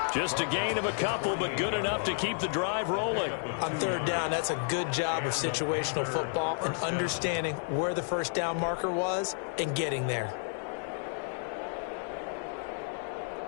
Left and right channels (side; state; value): right; silent; digital silence